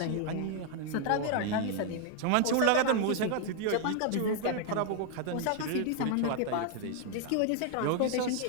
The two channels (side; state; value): both; different; correlation 0.00